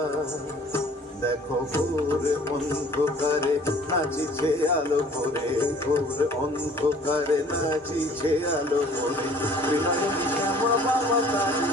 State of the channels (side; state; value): both; normal; correlation 0.53